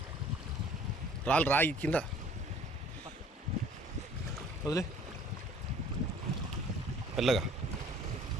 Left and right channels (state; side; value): normal; both; correlation 0.53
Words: రాయి కింద వదిలే. మెల్లగా